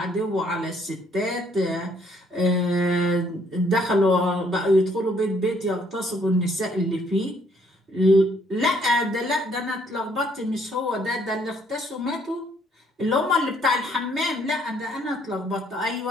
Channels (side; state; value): both; normal; correlation 0.66